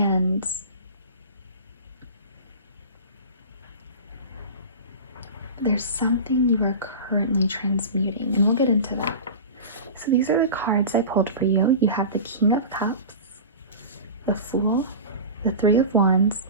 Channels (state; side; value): inverted; both; correlation -0.31